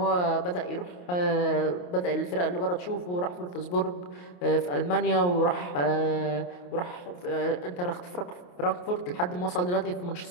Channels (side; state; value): right; late; 28 ms